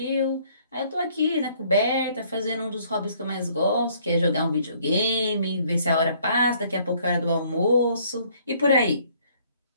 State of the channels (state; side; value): inverted; both; correlation -0.62